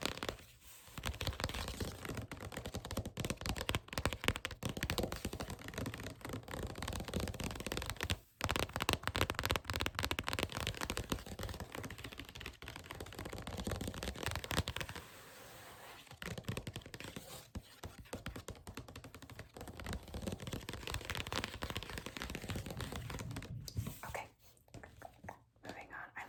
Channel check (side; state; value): both; identical; correlation 1.00